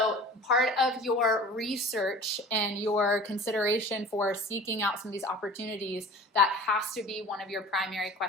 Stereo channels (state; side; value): normal; both; correlation 0.42